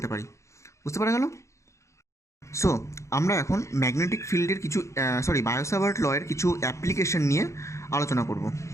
পারি। বুঝতে পারা গেল? সো আমরা এখন ম্যাগনেটিক ফিল্ডের কিছু বায়ো-সাভার্ট লয়ের কিছু অ্যাপ্লিকেশন নিয়ে আলোচনা করব।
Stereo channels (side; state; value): right; late; 0.14 ms